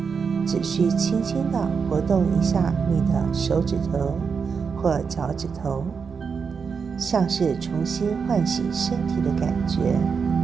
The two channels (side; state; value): left; quieter; 5.8 dB